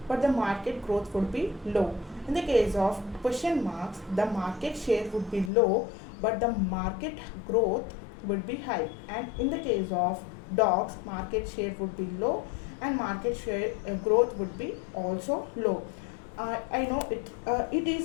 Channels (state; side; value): drops out; right; at 5.5 s